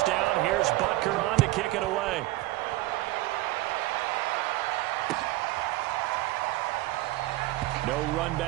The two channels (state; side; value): quieter; left; 18.1 dB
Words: here's Butker on to kick it away. No run